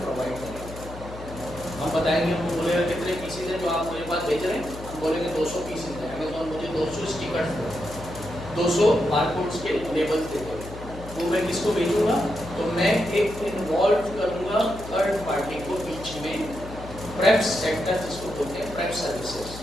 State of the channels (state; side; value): noise; left; hum, 13 dB below the sound